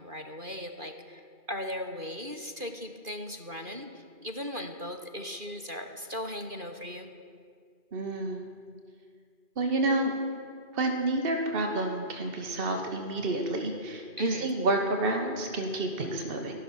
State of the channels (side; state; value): left; late; 2.4 ms